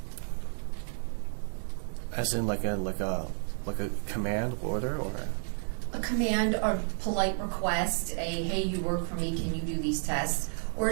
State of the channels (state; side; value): silent; left; digital silence